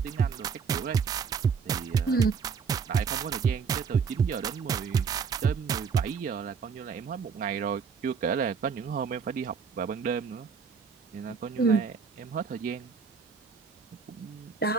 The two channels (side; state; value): left; quieter; 6.0 dB